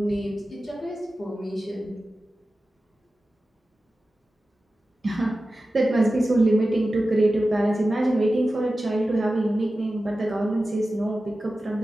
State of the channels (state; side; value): normal; both; correlation 0.94